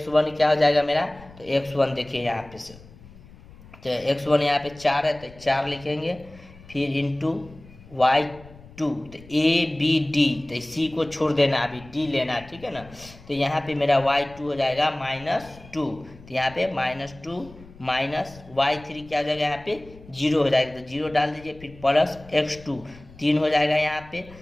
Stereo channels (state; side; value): noise; left; rumble, 21 dB below the sound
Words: क्या हो जाएगा मेरा, तो x1 देखिए यहाँ पे से, तो x1 यहाँ पे 4 है तो 4 लिखेंगे, फिर इंटू y2, तो ए बी डी, तो सी को छोड़ देना, अभी डी लेना, ठीक है ना। तो यहाँ पे मेरा y2 हो जाएगा -2, तो यहाँ पे -2 माइनस y3 क्या हो जाएगा, यहाँ पे 0 हो जाएगा, तो 0 डाल दीजिए, फिर प्लस x2 3 हो जाएगा यहाँ पे,